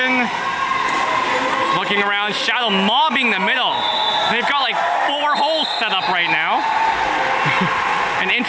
Looking around, Shadow mobbing the middle. They've got like 4 holes set up right now. An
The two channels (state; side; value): identical; both; correlation 1.00